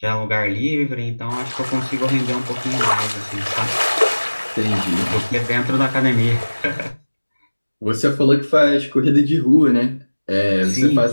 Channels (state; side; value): inverted; both; correlation -1.00